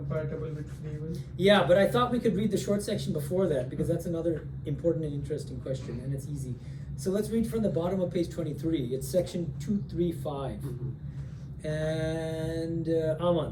with free will? Yeah, but I thought we could read the short section before that because that's another important and interesting question, and it's easy. So let's read from the bottom of page 23. It's section 235. And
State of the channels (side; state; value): both; identical; correlation 1.00